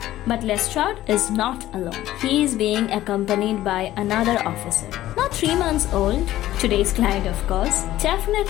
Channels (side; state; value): right; quieter; 14.4 dB